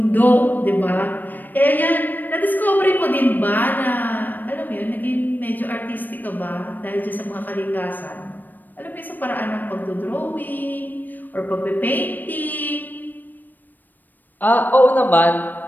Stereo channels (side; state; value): right; late; 0.089 ms